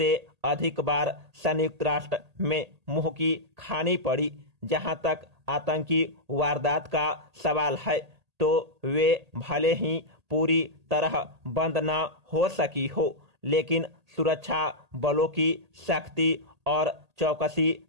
अधिक बार संयुक्त राष्ट्र में मुंह की खानी पड़ी। जहां तक आतंकी वारदात का सवाल है तो वे भले ही पूरी तरह बंद न हो सकी हो, लेकिन सुरक्षा बलों की सख्ती और चौकसी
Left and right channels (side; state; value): left; late; 1.8 ms